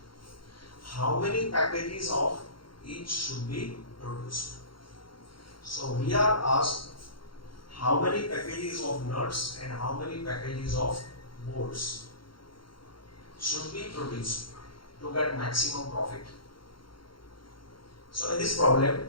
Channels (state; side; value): late; right; 0.73 ms